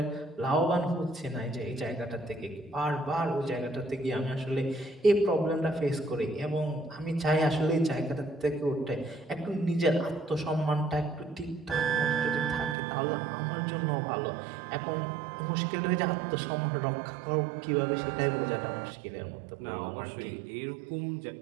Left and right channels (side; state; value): left; drops out; at 12.8 s